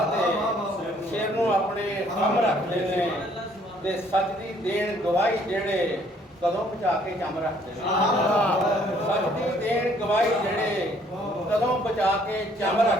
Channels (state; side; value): normal; both; correlation 0.62